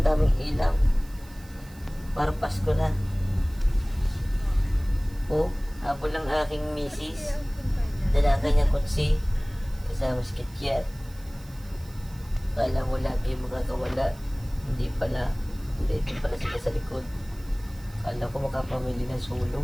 daming ilaw. Parang Pasko na. Oh, habol lang aking misis. Dala kanyang kutsi. Kasama si Kikyat. Kala mo lagi makakawala. Hindi pala. Hindi, ito pala sila sa likod. Kala ko makapamili ng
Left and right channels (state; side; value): noise; right; hiss, 23 dB below the sound